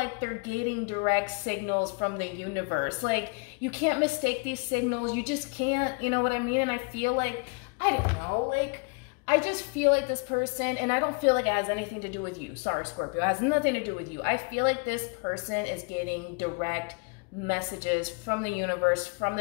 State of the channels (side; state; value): right; quieter; 33.7 dB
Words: they're getting direct signals from the universe. Like, you can't mistake these signals. You just can't, you know what I mean? And I feel like, I don't know, like, I just feel like this person, and I don't feel like it has anything to do with you. Sorry, Scorpio. It has nothing to do with you. I feel like this person is getting direct messages from the universe, from